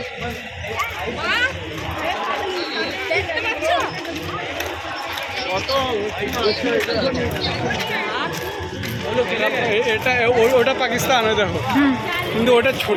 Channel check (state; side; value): identical; both; correlation 1.00